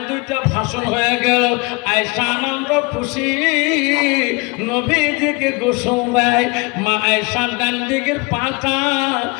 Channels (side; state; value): right; quieter; 27.6 dB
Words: দুইটা ভাষণ হয়ে গেল। আয়েশা আনন্দ খুশি নবীজিকে গোসল দেয়। মা আয়েশার ডান দিকের পাটা